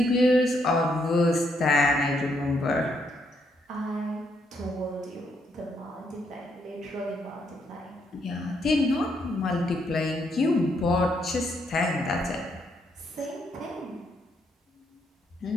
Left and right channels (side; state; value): both; normal; correlation 0.75